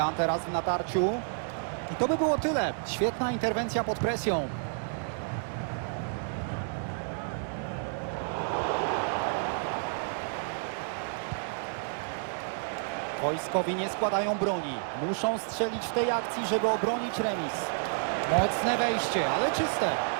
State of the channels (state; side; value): silent; left; digital silence